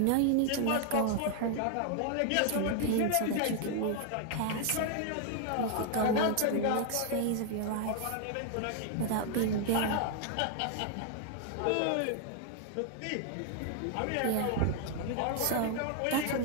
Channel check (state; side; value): different; both; correlation 0.00